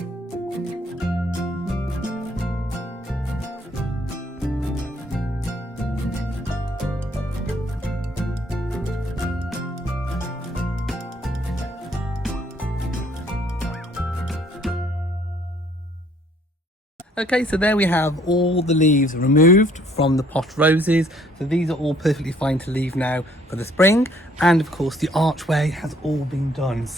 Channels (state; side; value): normal; both; correlation 0.62